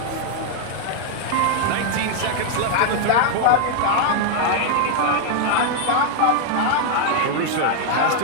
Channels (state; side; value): different; both; correlation 0.00